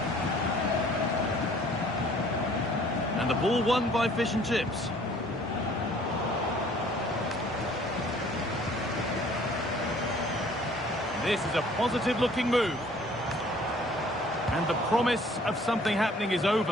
And the ball won by Fish and Chips. This is a positive-looking move. And the promise of something happening is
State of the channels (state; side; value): normal; both; correlation 0.55